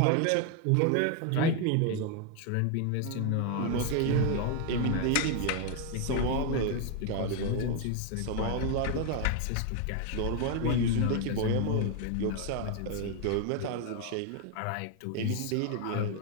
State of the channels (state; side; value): different; both; correlation 0.01